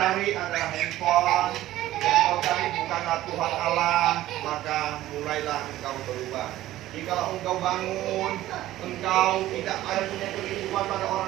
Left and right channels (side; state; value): left; quieter; 14.8 dB